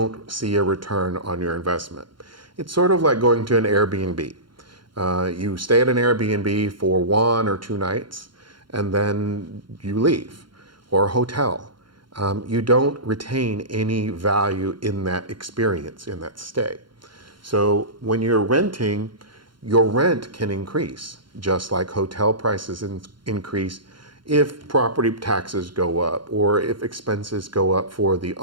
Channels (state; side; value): late; left; 0.72 ms